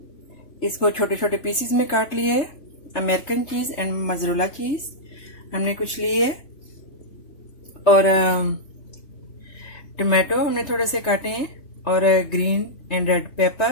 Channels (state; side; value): late; right; 3.3 ms